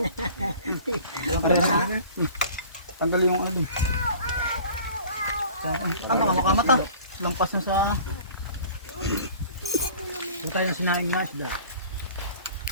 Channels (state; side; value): inverted; both; correlation -0.46